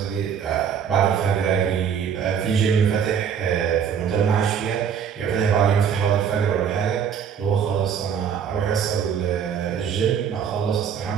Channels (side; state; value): left; quieter; 7.7 dB